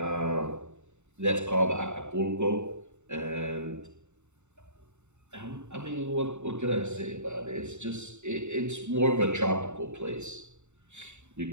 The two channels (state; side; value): late; left; 0.83 ms